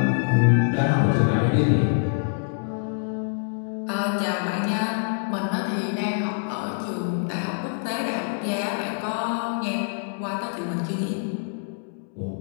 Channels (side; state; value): right; silent; digital silence